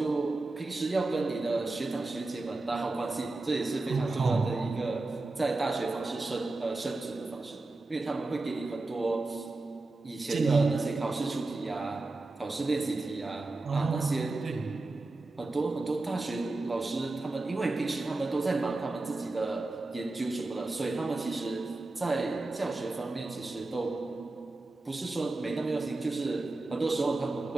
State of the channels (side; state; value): left; quieter; 3.1 dB